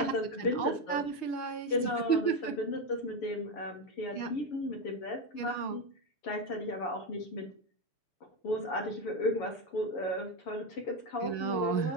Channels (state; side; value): late; right; 6.5 ms